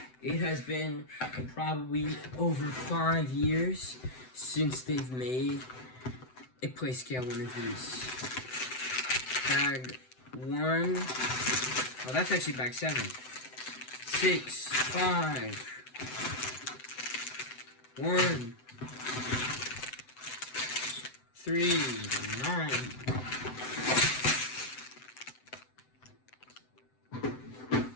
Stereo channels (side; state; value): right; late; 7.9 ms